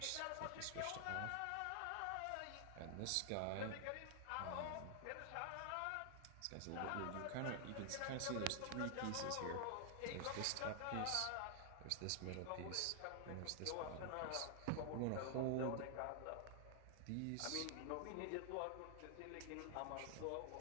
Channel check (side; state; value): both; different; correlation 0.00